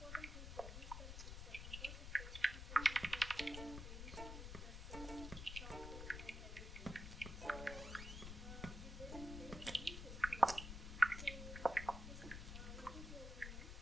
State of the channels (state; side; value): noise; left; rumble, 7 dB below the sound